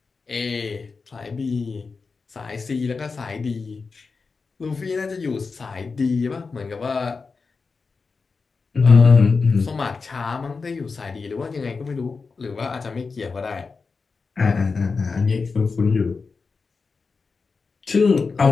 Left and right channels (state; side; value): quieter; right; 4.6 dB